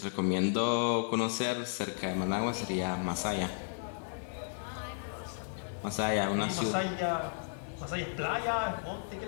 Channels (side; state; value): right; silent; 55 dB below the other